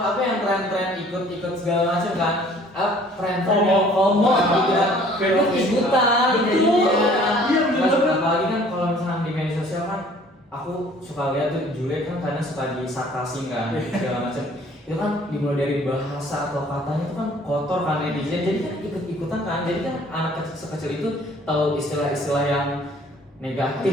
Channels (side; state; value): both; normal; correlation 0.55